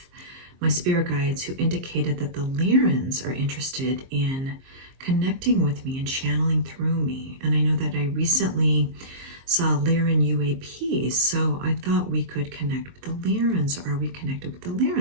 my spirit guides who indicated that the Lyrans are interested in connecting with me and channeling through me. And I know that I recently saw Lyran UAPs, so I thought we could connect with the Lyrans. Are we connected with the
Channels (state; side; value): late; left; 23 ms